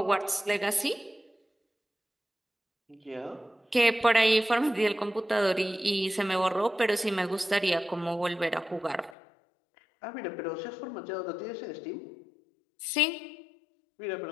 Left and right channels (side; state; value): right; drops out; at 9.2 s